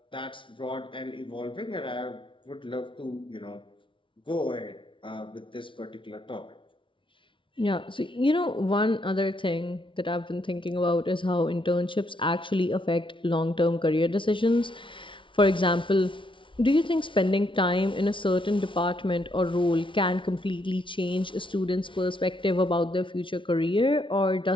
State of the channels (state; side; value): late; right; 0.25 ms